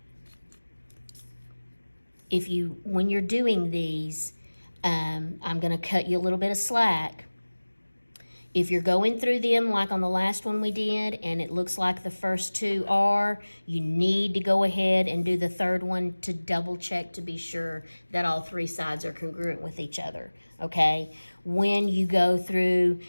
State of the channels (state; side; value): inverted; both; correlation -1.00